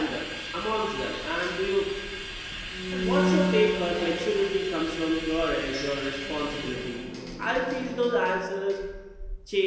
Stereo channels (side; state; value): both; identical; correlation 1.00